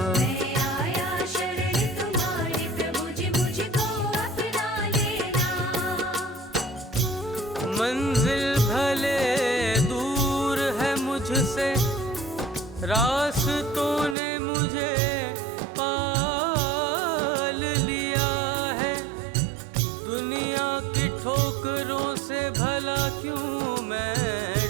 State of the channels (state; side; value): drops out; left; at 14.2 s